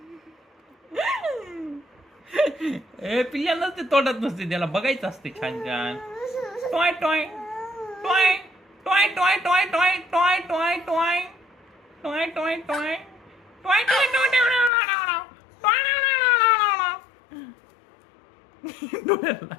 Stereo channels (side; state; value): right; drops out; at 14.7 s